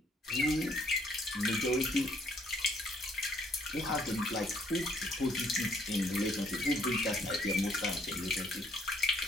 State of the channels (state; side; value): normal; both; correlation 0.65